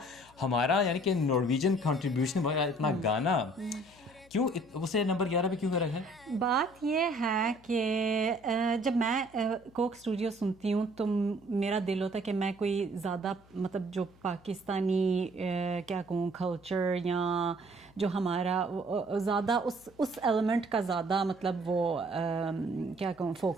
ہمارا یعنی کہ نارویجن کنٹریبیوشن اتنا گانا, کیوں اسے نمبر 11 پہ کیوں کر رکھا ہے؟ بات یہ ہے کہ جب میں کوک اسٹوڈیو سنتی ہوں تو میرا دل ہوتا ہے کہ میں کوئی زیادہ مطلب جو پاکستانی کیا کہوں کلچر یا جو ہمارا زیادہ اس ایلیمنٹ کا زیادہ مطلب وہ کیا کہوں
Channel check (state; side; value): noise; left; hum, 27 dB below the sound